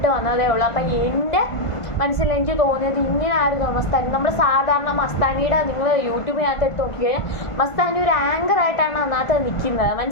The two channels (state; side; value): late; right; 1.5 ms